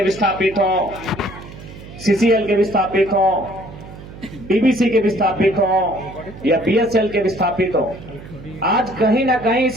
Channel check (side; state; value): right; noise; hum, 16 dB below the sound